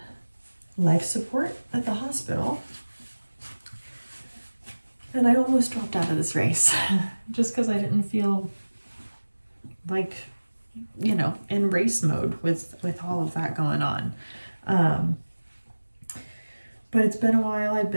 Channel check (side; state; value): both; inverted; correlation -1.00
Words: life support at the hospital. And I almost dropped out of this race just because I didn't feel like, in race mode with all of that going on. But it's been a while. I've